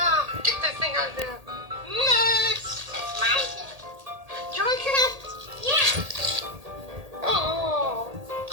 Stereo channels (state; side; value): late; left; 1.8 ms